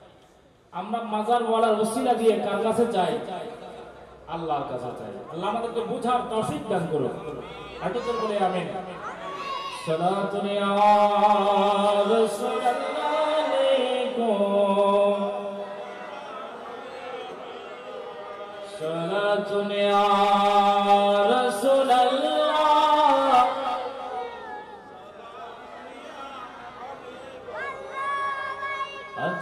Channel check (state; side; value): identical; both; correlation 1.00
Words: আমরা মাজার ওয়ালার ওসিলা দিয়ে কার কাছে চাই? আল্লাহর কাছে চাই। আল্লাহ আমাদেরকে বুঝার তৌফিক দান করুন। একটু জোরে বলে আমিন। সালাতুন ইয়া রাসূলুল্লাহ আলাইকুম, সালাতুন ইয়া রাসূলুল্লাহ,